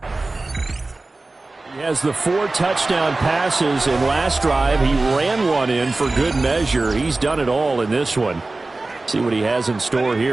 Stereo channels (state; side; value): quieter; left; 3.2 dB